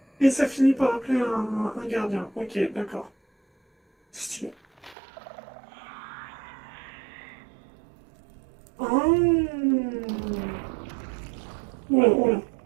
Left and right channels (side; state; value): left; drops out; at 5.0 s